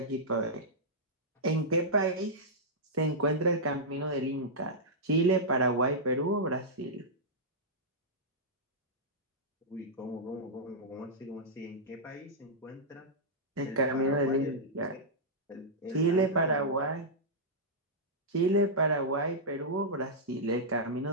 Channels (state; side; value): normal; both; correlation -0.11